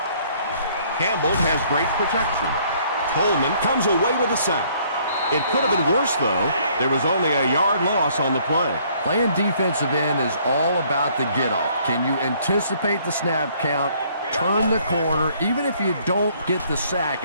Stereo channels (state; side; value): inverted; both; correlation -0.62